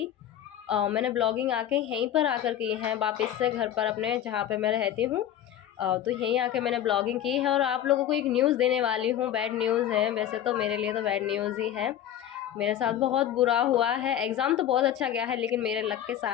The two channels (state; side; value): quieter; right; 11.0 dB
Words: मैंने ब्लॉगिंग आके यहीं पर आकर की है, वापस से घर पर अपने जहाँ पर मैं रहती हूँ। तो यहीं आके मैंने ब्लॉगिंग की है और आप लोगों को एक न्यूज़ देने वाली हूँ। बैड न्यूज़ है, वैसे तो मेरे लिए तो बैड न्यूज़ ही है। मेरे साथ बहुत बुरा हुआ है। एग्ज़ाम तो बहुत अच्छा गया है, लेकिन मेरे लक के